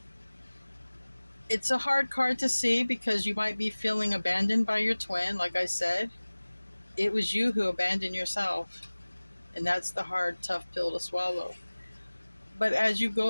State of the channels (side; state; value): both; inverted; correlation -1.00